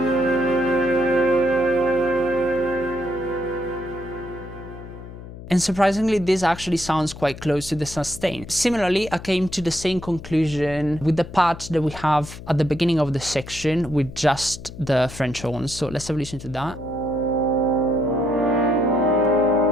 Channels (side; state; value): left; noise; hum, 14 dB below the sound